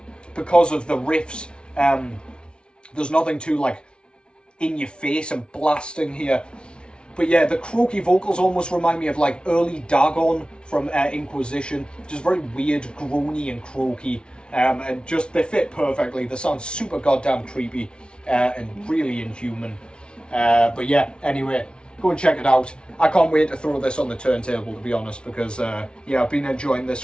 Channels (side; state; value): right; late; 0.056 ms